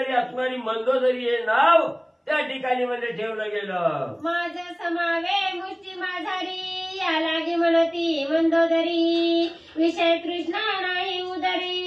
असणारी मंदोदरी हे नाव त्या ठिकाणी म्हणजे ठेवलं गेलं. माझ समावे मुष्टी माझारी या लागे म्हणती मंदोदरी विषय तृष्णा नाही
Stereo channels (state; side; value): identical; both; correlation 1.00